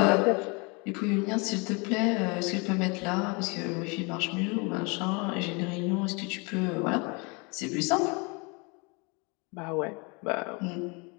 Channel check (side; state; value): right; quieter; 30.0 dB